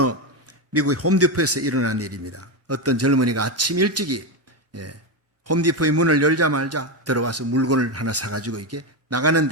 미국의 홈디포에서 일어난 일입니다. 어떤 젊은이가 아침 일찍이 홈디포의 문을 열자마자 들어와서 물건을 하나 사가지고 이렇게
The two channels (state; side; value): normal; both; correlation 0.11